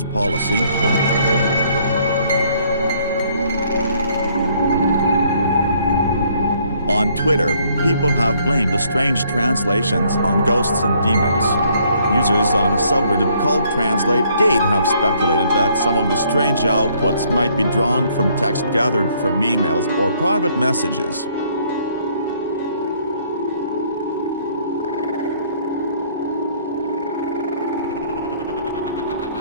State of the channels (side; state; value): both; inverted; correlation -0.65